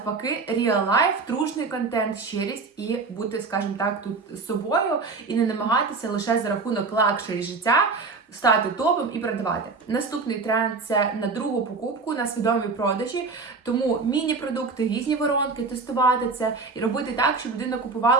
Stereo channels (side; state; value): left; quieter; 4.3 dB